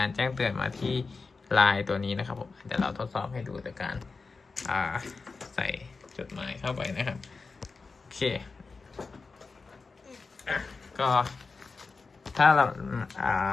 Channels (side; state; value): right; quieter; 4.3 dB